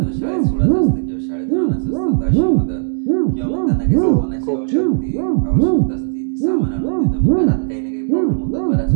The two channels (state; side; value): silent; left; 68 dB below the other